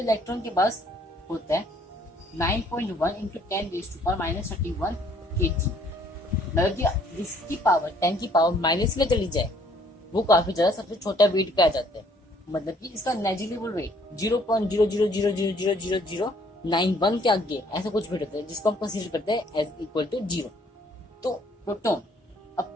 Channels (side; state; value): both; normal; correlation 0.62